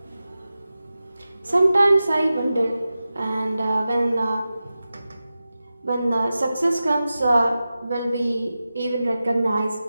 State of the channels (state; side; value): inverted; both; correlation -0.94